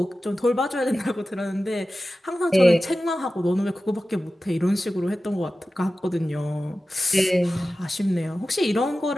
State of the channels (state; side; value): normal; both; correlation 0.95